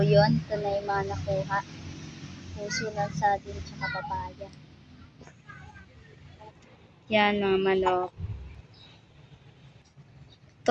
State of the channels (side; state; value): both; identical; correlation 1.00